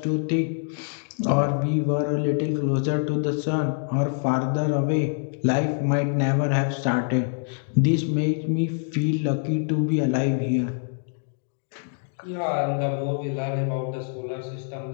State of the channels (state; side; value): silent; right; digital silence